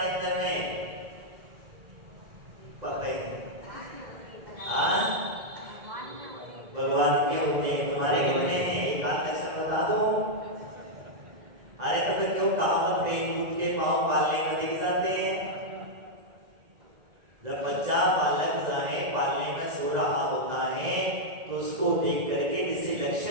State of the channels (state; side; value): late; left; 2.0 ms